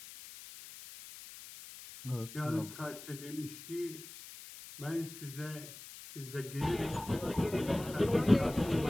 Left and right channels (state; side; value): noise; left; hiss, 14 dB below the sound